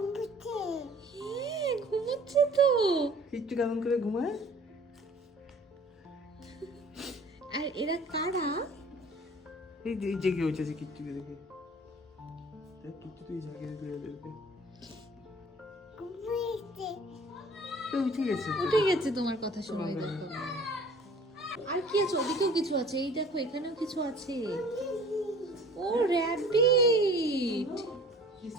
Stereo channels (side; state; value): both; normal; correlation 0.49